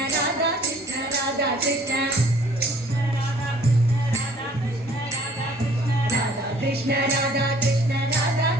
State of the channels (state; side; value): normal; both; correlation 0.56